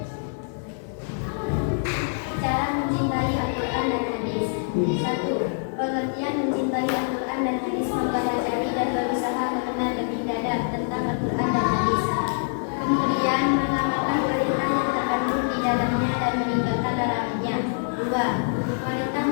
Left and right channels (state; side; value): silent; right; 62 dB below the other